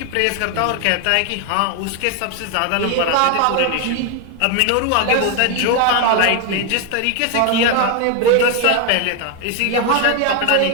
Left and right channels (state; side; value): different; both; correlation 0.01